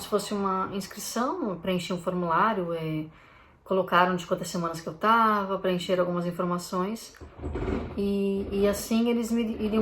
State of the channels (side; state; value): both; identical; correlation 1.00